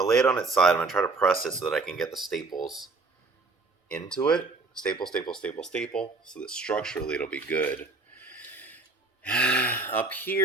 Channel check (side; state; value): left; quieter; 3.7 dB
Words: lay it on its side. I'm going to try to press it so that I can get the staples into it. Staple, staple, staple, staple, so that structurally it'll be good. Up